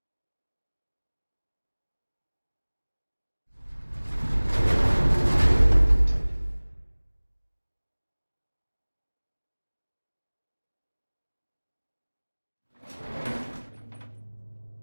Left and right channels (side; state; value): both; inverted; correlation -1.00